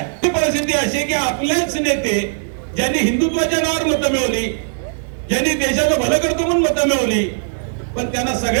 ती परिस्थिती अशी की आपलेच नेते ज्यांनी हिंदुत्वाच्या नावावर मतं मिळवली, ज्यांनी देशाचं भलं करतो म्हणून मतं मिळवली, पण त्यांना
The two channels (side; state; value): left; silent; 67 dB below the other